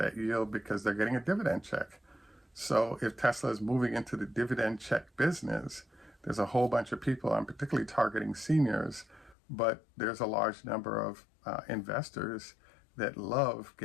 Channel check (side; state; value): right; drops out; at 9.3 s